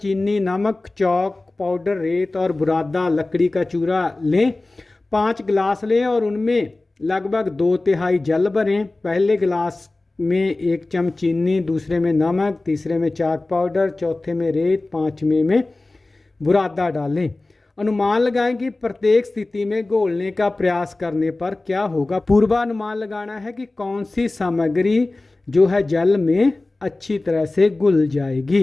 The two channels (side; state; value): right; quieter; 3.0 dB